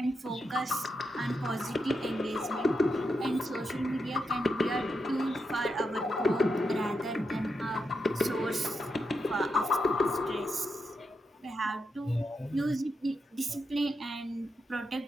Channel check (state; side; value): normal; both; correlation 0.85